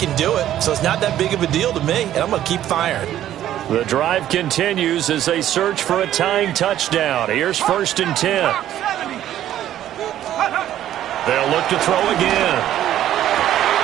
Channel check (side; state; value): left; quieter; 12.1 dB